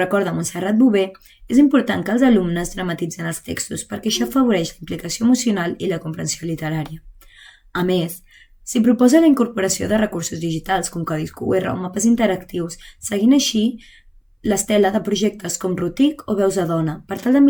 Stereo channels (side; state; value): both; identical; correlation 1.00